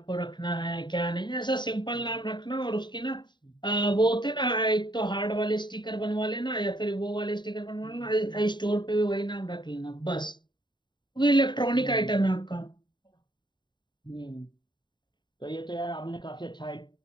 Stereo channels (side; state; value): right; late; 0.22 ms